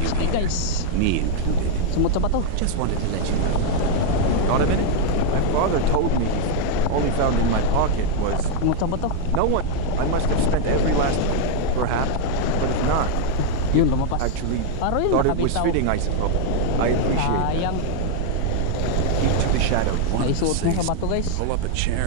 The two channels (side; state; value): both; different; correlation 0.00